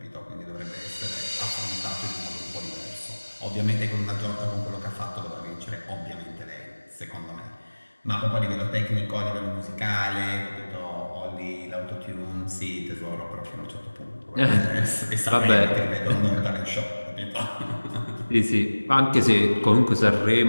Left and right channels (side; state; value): both; inverted; correlation -1.00